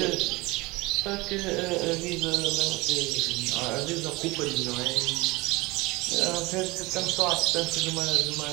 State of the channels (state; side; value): quieter; left; 22.6 dB